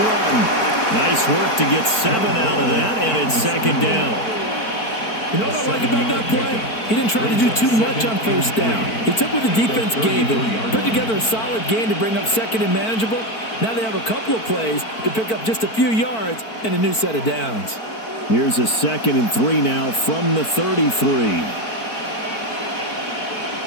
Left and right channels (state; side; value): late; right; 4.5 ms